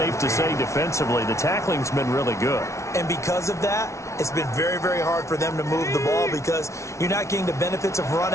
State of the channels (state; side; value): late; right; 0.14 ms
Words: to say defensively, the tackling's been really good. And because of that, it's been very, very hard for them to move the ball because you're not getting the benefits of run